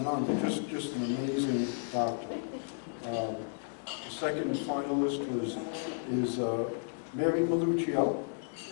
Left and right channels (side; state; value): right; silent; digital silence